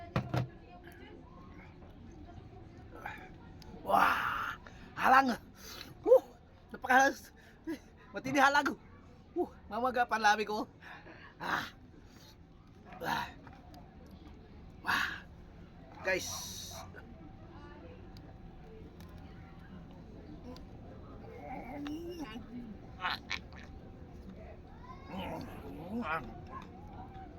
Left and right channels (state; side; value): identical; both; correlation 1.00